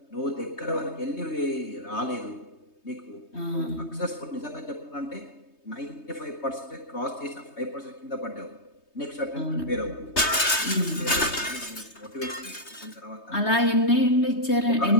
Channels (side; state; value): right; late; 3.2 ms